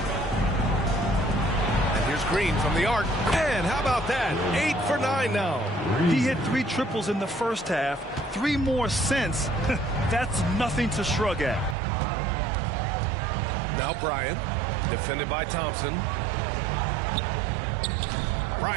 And here's Green from the arc. And how about that? 8 for 9 now. He hit 3 triples in the first half. 3 more since. That's nothing to shrug at. Now Bryant. Defended by Thompson.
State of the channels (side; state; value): left; drops out; at 11.8 s